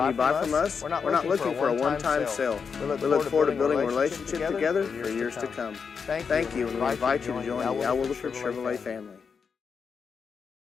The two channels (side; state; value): right; quieter; 5.9 dB